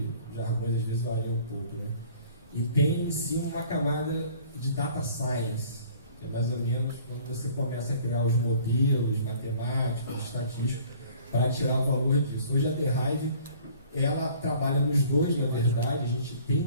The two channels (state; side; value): inverted; both; correlation -0.52